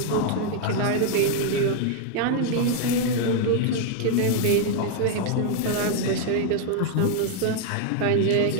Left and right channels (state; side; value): different; both; correlation 0.00